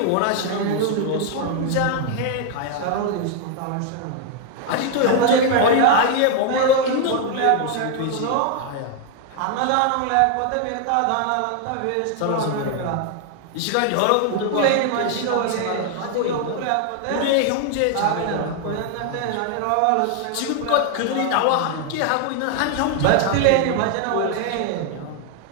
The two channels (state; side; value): different; both; correlation 0.00